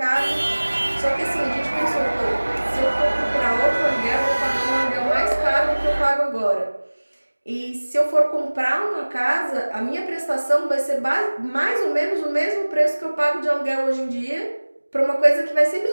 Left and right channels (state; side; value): inverted; both; correlation -1.00